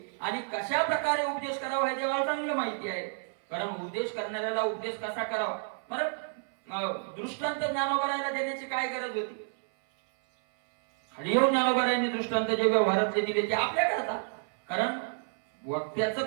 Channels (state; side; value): silent; left; 58 dB below the other